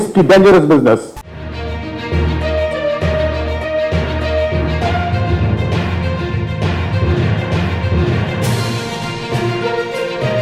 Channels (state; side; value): identical; both; correlation 1.00